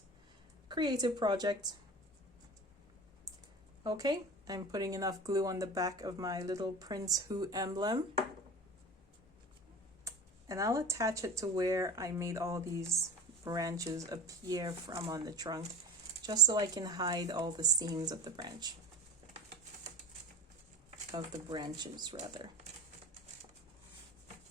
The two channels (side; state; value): both; normal; correlation 0.34